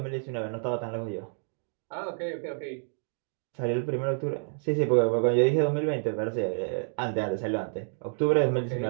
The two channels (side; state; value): left; silent; digital silence